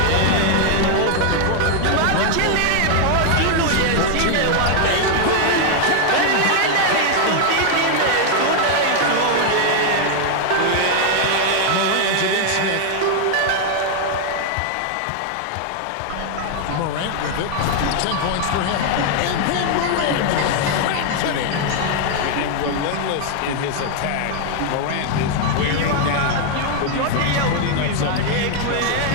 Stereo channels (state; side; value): different; both; correlation 0.00